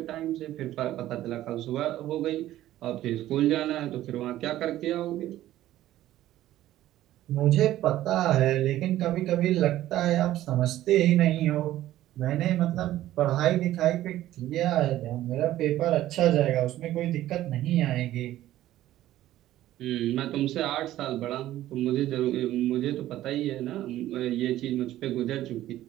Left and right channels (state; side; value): quieter; left; 14.0 dB